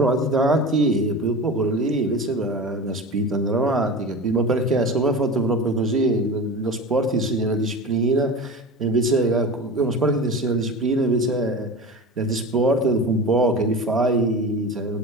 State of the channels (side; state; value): both; normal; correlation 0.31